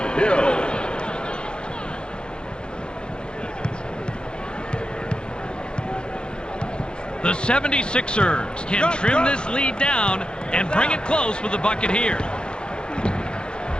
The 76ers can trim this lead down and bring it close with a bucket here.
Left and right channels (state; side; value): late; right; 0.050 ms